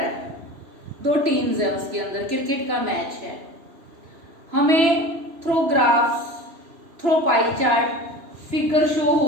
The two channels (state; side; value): late; left; 3.0 ms